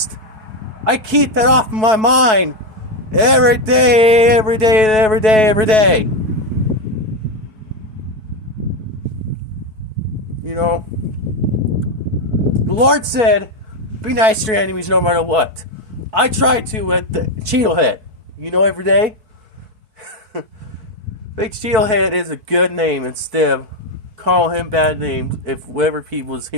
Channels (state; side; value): late; left; 4.6 ms